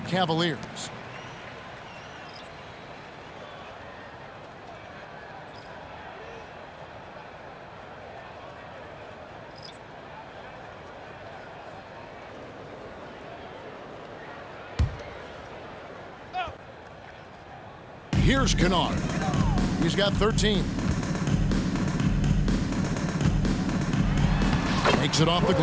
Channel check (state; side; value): identical; both; correlation 1.00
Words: Cavaliers. Here's Kennard. He's got 13. Takes it off the